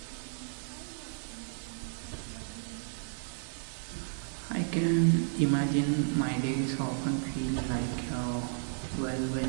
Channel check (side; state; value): left; silent; 56 dB below the other